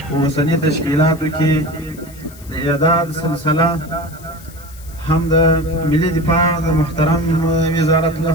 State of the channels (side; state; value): left; noise; hiss, 21 dB below the sound